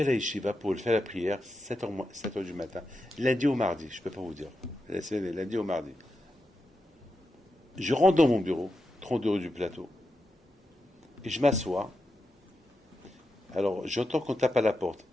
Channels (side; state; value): both; normal; correlation 0.88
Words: à la yeshiva pour faire la prière, 7h du matin, lundi au mardi, je ne peux pas vous dire, lundi au mardi. Je rentre dans mon bureau, 32 rue du Plateau, et je m'assois. Alors, j'entends qu'on tape à la porte.